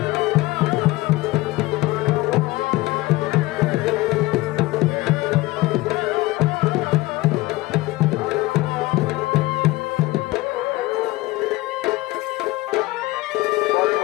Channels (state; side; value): quieter; right; 19.8 dB